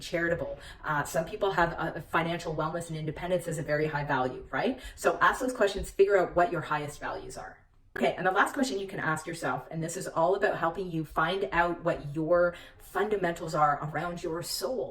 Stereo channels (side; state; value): both; identical; correlation 1.00